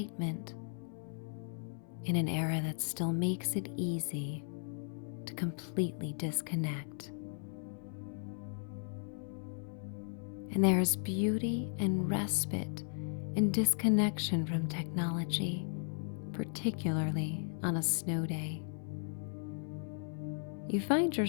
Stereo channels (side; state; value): right; silent; 54 dB below the other